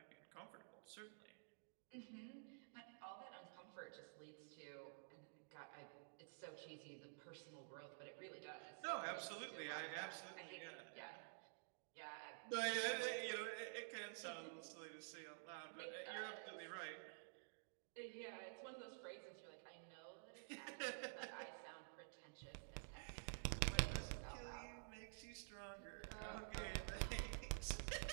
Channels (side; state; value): left; silent; digital silence